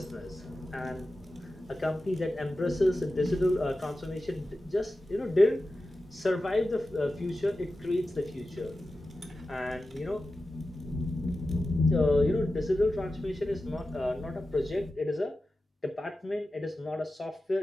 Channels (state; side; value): normal; both; correlation 0.93